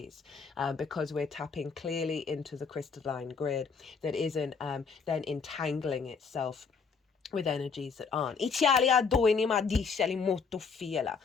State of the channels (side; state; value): right; quieter; 5.4 dB